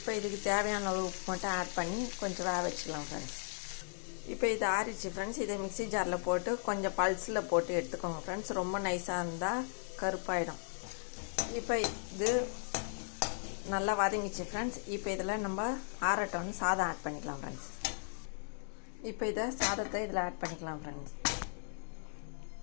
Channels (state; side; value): silent; right; digital silence